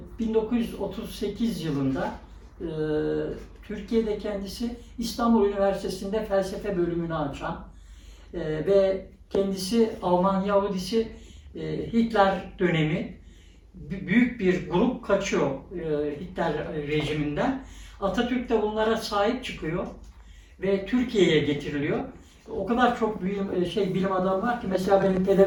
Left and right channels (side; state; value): both; identical; correlation 1.00